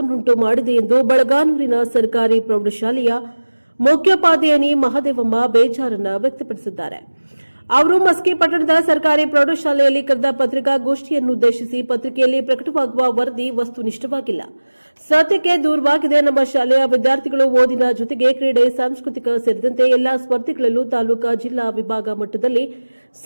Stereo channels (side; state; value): both; inverted; correlation -1.00